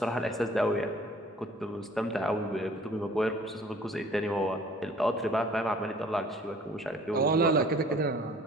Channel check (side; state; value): both; normal; correlation 0.52